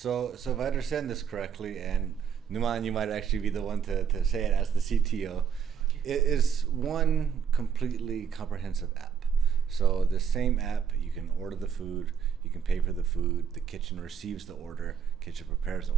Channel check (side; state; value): left; quieter; 7.4 dB